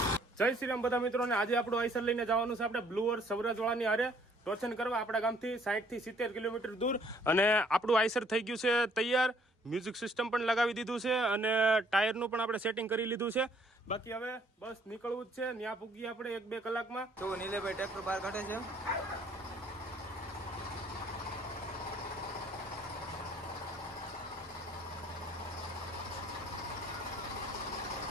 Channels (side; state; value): both; normal; correlation 0.62